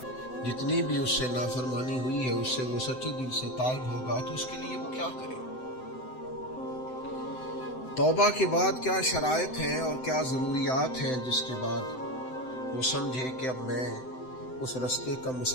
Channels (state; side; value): late; right; 7.8 ms